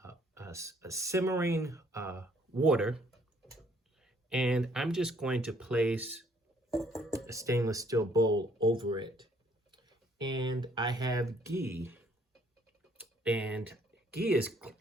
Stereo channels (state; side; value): normal; both; correlation 0.64